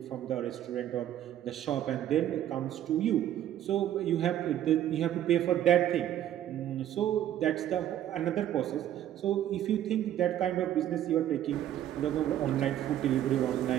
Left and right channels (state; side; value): quieter; left; 11.7 dB